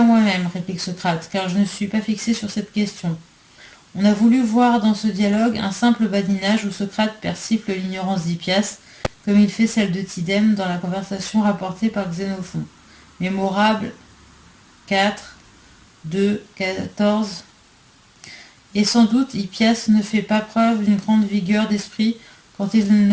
moi-même, réplique Socrate, car je ne suis pas fixé sur cette question. On a voulu voir dans ce dialogue un simple badinage où Socrate persifle l'ignorance d'Hippias, comme il fait celle de Tidème dans la conversation rapportée par Xénophon. Mémorable 4, 2, 14. Et sans doute Hippias ne fait pas preuve d'une grande vigueur d'esprit quand il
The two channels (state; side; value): identical; both; correlation 1.00